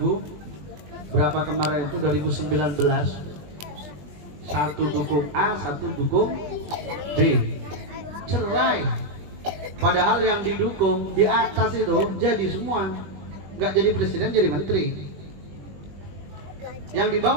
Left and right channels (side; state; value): left; late; 20 ms